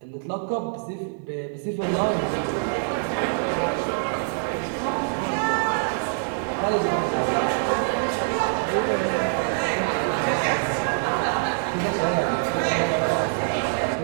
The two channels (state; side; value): silent; left; 62 dB below the other